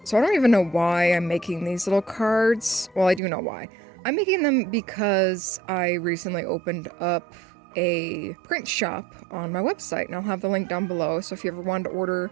So I don't even know why I'm making these little cards. Well, I do know why. I'm making them because I recently opened up a print shop on my website, and I'll have the link down below. So if you ever wanted to order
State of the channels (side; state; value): left; drops out; at 3.2 s